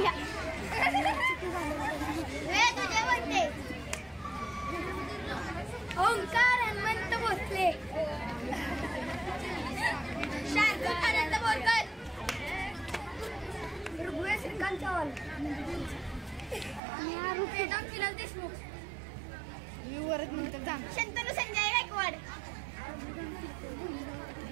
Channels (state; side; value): drops out; left; at 16.8 s